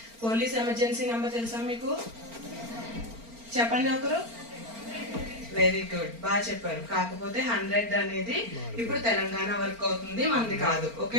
పోలీస్ ఎమర్జెన్సీ నెంబర్ తెలుసా మీకు? చెప్పండి ఒకరు. వెరీ గుడ్, బాగా చెప్పారు. కాకపోతే 100 అనేది ఇప్పుడు తెలంగాణ వర్క్ అవుతుంది, మనది కాదు.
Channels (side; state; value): left; late; 4.4 ms